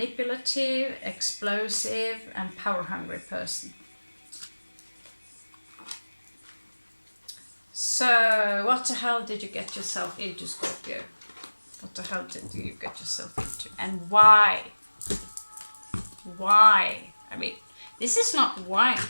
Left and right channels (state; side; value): inverted; both; correlation -1.00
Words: explosive, and power-hungry person. So, what the hell did you get yourself into, Scorpio? What the hell did you get yourself into? And why? Why? I mean, this is not why.